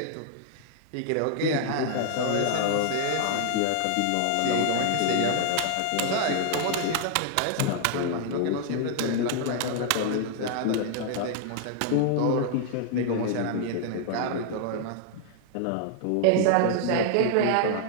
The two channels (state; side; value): different; both; correlation 0.00